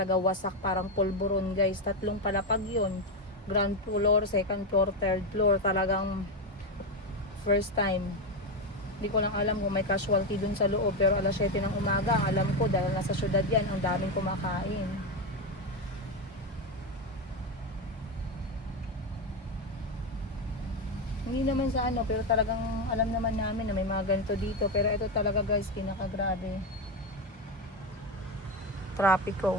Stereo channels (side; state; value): both; normal; correlation 0.11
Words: wasak, parang pulburon, guys. 3 palapag yun. Ground floor, second floor, third floor. Talagang first time. Hindi ko lang alam kung may casualty dun sa loob, pero alas 7 ng umaga, ang alam ko dahil nasa syudad yan, ang daming kumakain. Hindi naman sa ano, pero talagang alam naman namin na may mga ganito dito. Pero ito talaga, guys, pinakagrabe.